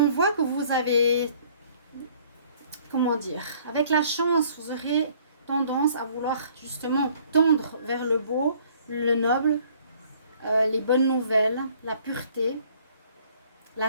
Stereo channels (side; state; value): both; inverted; correlation -0.58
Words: voit que vous avez, comment dire, avec la chance, vous aurez tendance à vouloir justement tendre vers le beau, le noble, les bonnes nouvelles, la pureté,